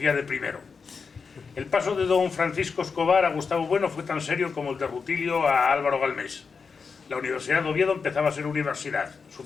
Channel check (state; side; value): quieter; right; 5.3 dB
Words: de primero. El paso de don Francisco Escobar a Gustavo Bueno fue tan serio como el de Rutilio a Álvaro Galmés. La Universidad de Oviedo empezaba a ser universidad. Su